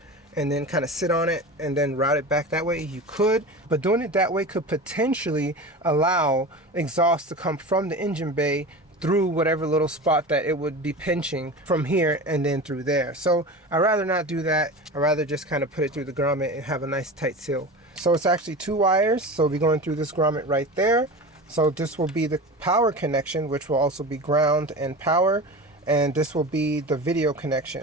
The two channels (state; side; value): normal; both; correlation 0.31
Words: and then kind of sit on it and then route it back that way. You could, but doing it that way could potentially allow exhaust to come from the engine bay through whatever little spot that it would be pinching from here and then through there. So I'd rather not do that. I'd rather just kind of put it through the grommet and have a nice tight seal. So it's actually 2 wires, so we'll be going through this grommet right there. So this will be the power connection, which will also be ground and power, and this will be the video